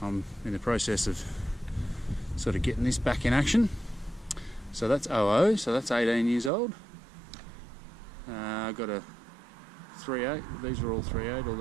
I'm in the process of sort of getting this back in action. So that's 00, so that's 18 years old. I've got a 3.8, these are all 3.8, all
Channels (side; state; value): left; drops out; at 6.5 s